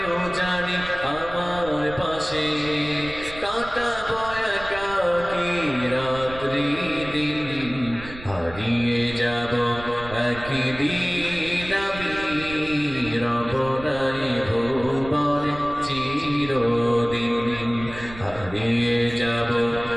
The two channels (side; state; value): right; noise; rumble, 15 dB below the sound